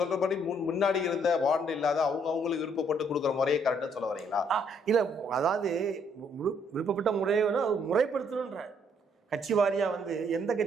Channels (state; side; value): normal; both; correlation 0.68